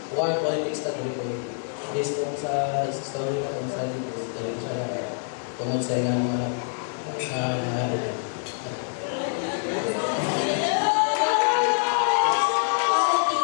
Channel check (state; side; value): silent; right; digital silence